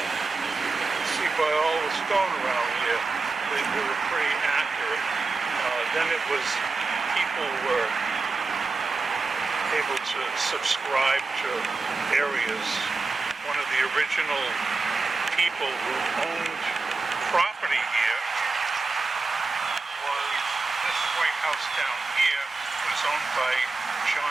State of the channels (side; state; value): left; quieter; 3.9 dB